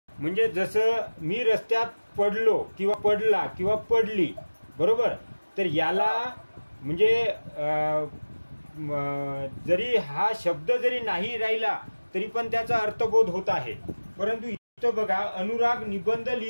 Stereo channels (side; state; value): both; inverted; correlation -1.00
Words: म्हणजे जसं मी रस्त्यात पडलो किंवा पडला किंवा पडली, बरोबर, तर याला म्हणजे जरी हा शब्द जरी नाही राहिला तरी पण त्याचा अर्थबोध होत आहे. परंतु इथं बघा, अनुराग निबंध